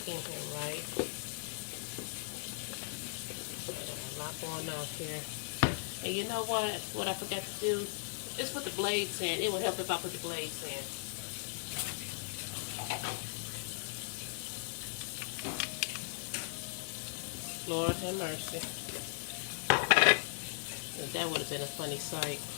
in here right. I got a lot going on here. And you know what? What I forgot to do is put the blades in. It would help if I put the blades in. Lord have mercy. That would have been a funny sight.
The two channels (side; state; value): right; silent; digital silence